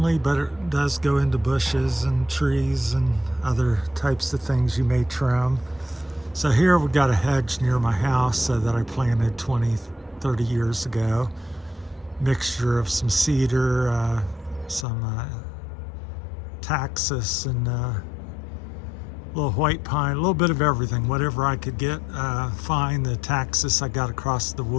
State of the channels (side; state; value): right; drops out; at 14.9 s